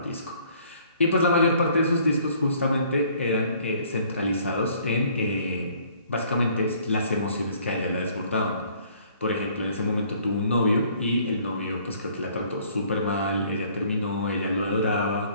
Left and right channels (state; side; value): inverted; both; correlation -0.59